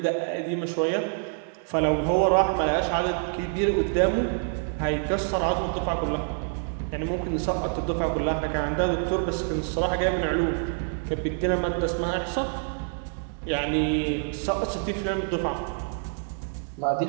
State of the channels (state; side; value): silent; left; 60 dB below the other